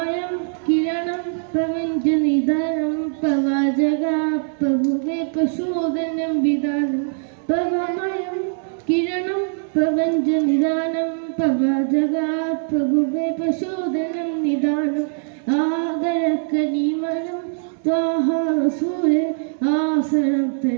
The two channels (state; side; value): silent; left; digital silence